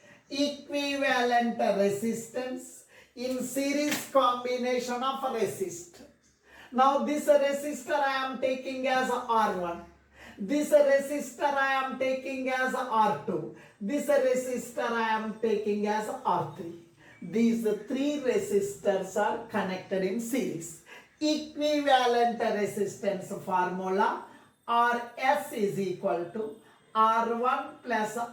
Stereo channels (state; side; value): identical; both; correlation 1.00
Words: Equivalent resistance in series combination of resistors. Now this resistor I am taking as R1. This resistor I am taking as R2. This resistor I am taking as R3. These three resistors are connected in series. Equivalent resistance formula Rs is equal to R1 plus